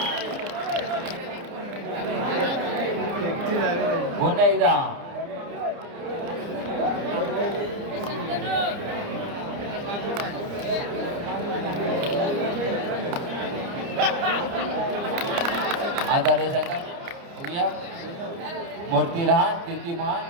पुन्हा एकदा आधार संघ बघूया. मूर्ती लहान कीर्ती महान.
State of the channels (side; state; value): left; late; 29 ms